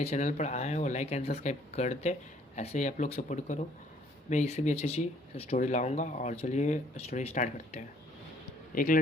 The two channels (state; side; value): normal; both; correlation 0.62